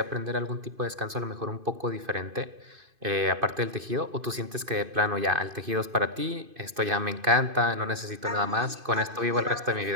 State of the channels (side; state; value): left; late; 2.5 ms